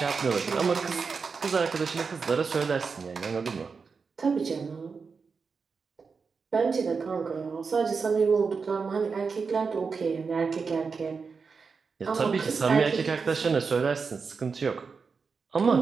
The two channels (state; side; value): quieter; left; 5.1 dB